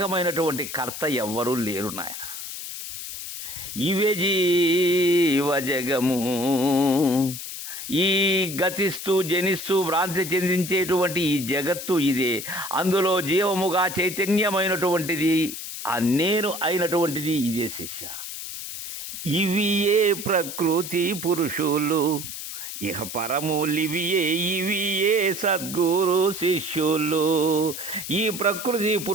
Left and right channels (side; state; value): left; noise; hiss, 8 dB below the sound